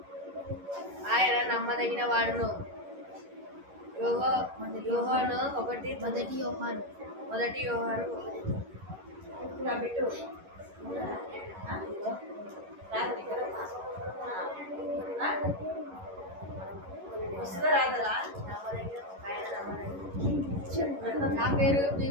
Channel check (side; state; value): left; late; 11 ms